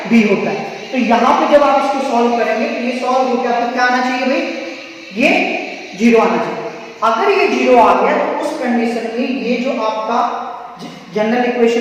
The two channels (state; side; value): identical; both; correlation 1.00